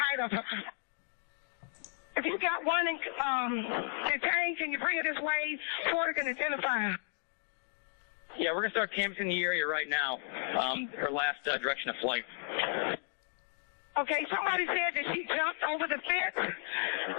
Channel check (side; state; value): right; silent; digital silence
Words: of her. If you got one detained, can you bring it this way? Porter can identify her. Yeah, we're going to start canvassing the area right now. Her last direction of flight. Okay, somebody said that she jumped over the fence.